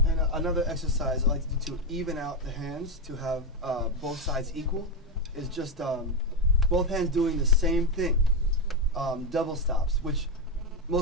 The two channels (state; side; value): normal; both; correlation 0.07